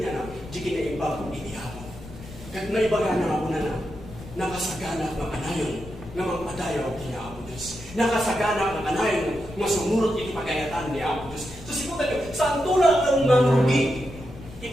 na, di kinaimbag iti ako. Kat naibaga na ako na nakasagana ng anayon, nga magpadayaw kini ako Diyos. Nakasagana ng anayon, nga sumurot iti pagayatan ni ako Diyos. So siputan nyo, saan tulad ng marugi,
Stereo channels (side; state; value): left; noise; rumble, 15 dB below the sound